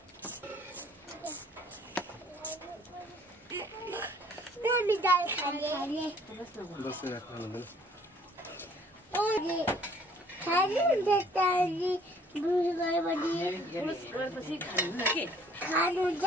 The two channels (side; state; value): both; normal; correlation 0.57